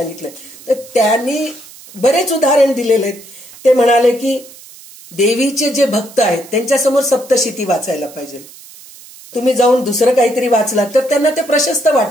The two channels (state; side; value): noise; right; hiss, 20 dB below the sound